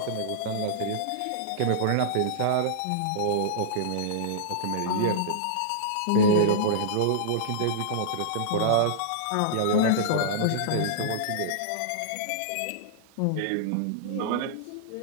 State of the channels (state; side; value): different; both; correlation -0.02